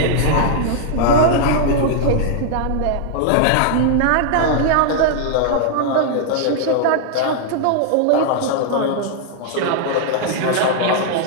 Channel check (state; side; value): different; both; correlation -0.01